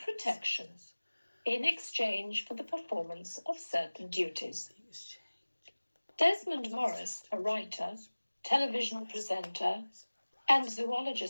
protection in exchange for the performance of certain duties. Desmond Morris, a writer, television presenter, and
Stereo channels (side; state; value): both; inverted; correlation -1.00